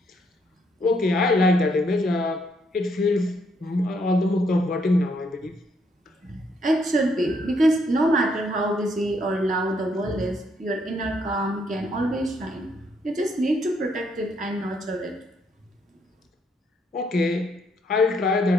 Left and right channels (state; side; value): normal; both; correlation 0.72